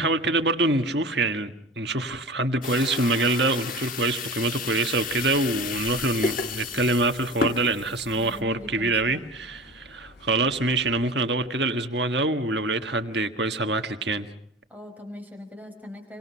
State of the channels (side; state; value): both; normal; correlation 0.34